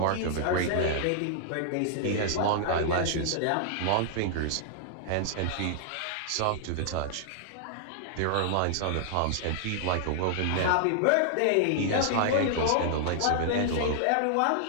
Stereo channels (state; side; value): different; both; correlation -0.01